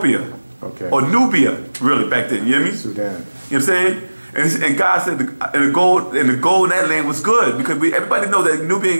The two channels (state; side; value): inverted; both; correlation -1.00